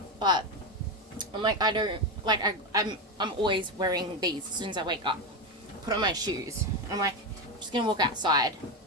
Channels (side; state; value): both; normal; correlation 0.13